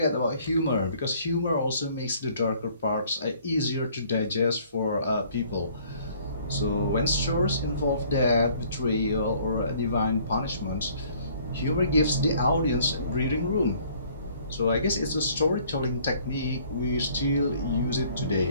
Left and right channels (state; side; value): inverted; both; correlation -0.58